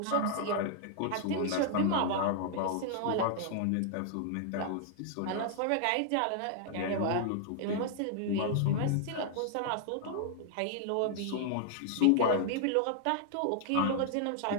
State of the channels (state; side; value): different; both; correlation -0.01